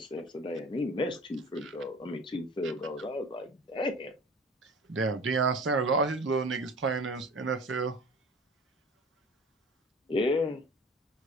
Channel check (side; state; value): both; normal; correlation 0.41